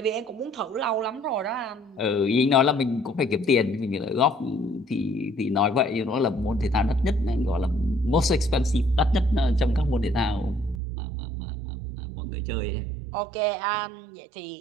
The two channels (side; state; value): left; drops out; at 10.8 s